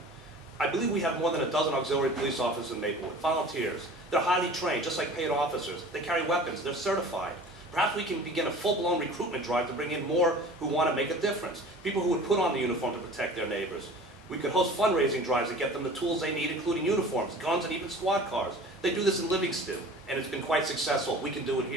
I believe we have more than a dozen auxiliary police officers in Maplewood, volunteers. They're highly trained, just like paid officers. They carry weapons, they're certified. Perhaps we can begin a full-blown recruitment drive to bring in more who want to make a difference, people who would put on the uniform to protect their neighbors. We could host fundraising drives to get them the tools they need, including uniforms, guns, and even squad cars. They do this in Livingston, and it's been quite successful. We can do it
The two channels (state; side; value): normal; both; correlation 0.42